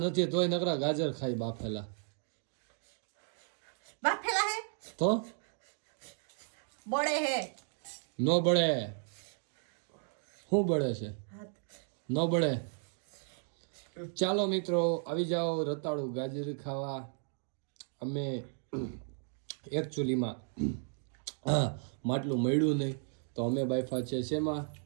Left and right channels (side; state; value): left; silent; 55 dB below the other